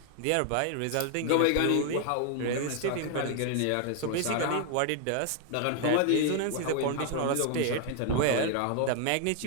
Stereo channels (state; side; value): different; both; correlation 0.00